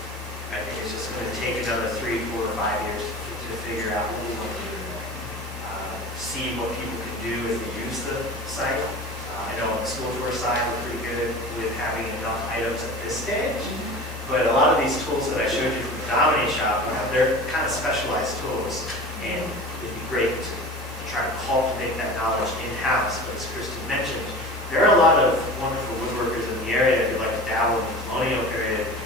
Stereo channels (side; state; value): both; normal; correlation 0.36